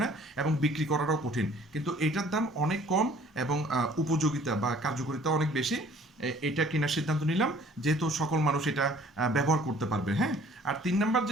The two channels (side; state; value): both; normal; correlation 0.55